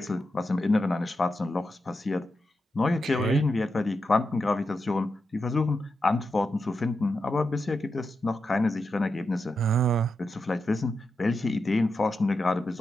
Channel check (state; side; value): normal; both; correlation 0.88